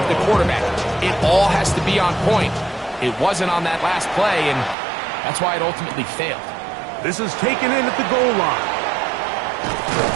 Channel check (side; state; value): left; drops out; at 4.8 s